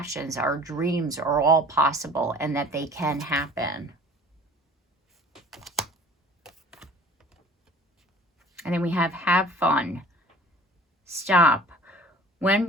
our dreams are all possible and that they can happen. And then we have fun. Stop. When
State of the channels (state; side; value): normal; both; correlation 0.46